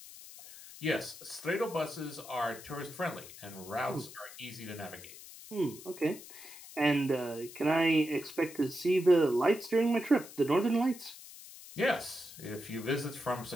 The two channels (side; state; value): left; noise; hiss, 16 dB below the sound